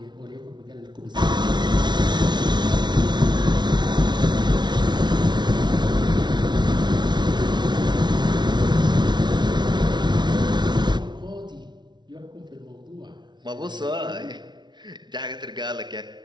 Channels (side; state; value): left; late; 0.21 ms